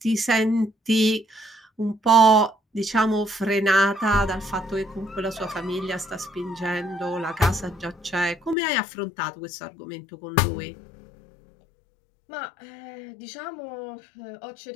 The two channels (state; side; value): drops out; right; at 8.6 s